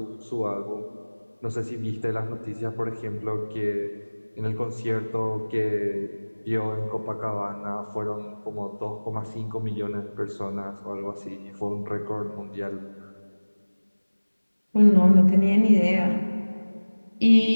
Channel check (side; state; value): both; inverted; correlation -1.00